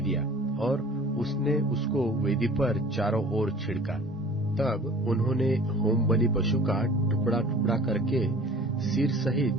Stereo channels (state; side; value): normal; both; correlation 0.46